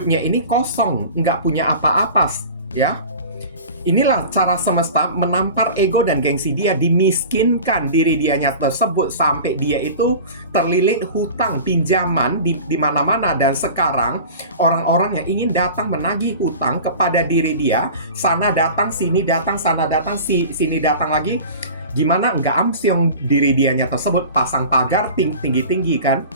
ini kosong, nggak punya apa-apa, ya. Inilah cara semesta menampar ego dan gengsi dia, dimiskinkan diri dianya tersebut sampai dia itu terlilit hutang, pinjaman di mana-mana. Dan sekarang orang-orang yang ingin datang menagih hutang kepada diri dia, sana datang, sini datang, sana datang, sini datang lagi. Gimana nggak amsyong diri dianya tersebut, pasang pagar tinggi-tinggi kan,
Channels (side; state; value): both; inverted; correlation -0.37